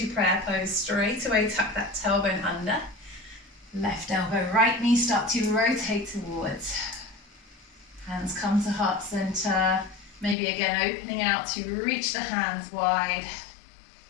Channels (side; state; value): right; drops out; at 10.4 s